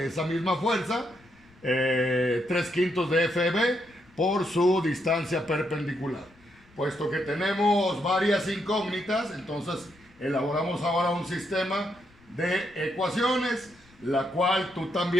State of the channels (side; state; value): left; noise; rumble, 29 dB below the sound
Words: esa misma fuerza, 3/5 de FEB por su distancia perpendicular. Puesto que tenemos varias incógnitas, entonces elaboramos ahora un sistema de ecuaciones, la cual tú